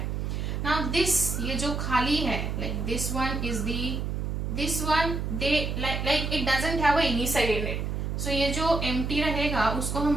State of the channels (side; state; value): right; noise; hum, 2 dB below the sound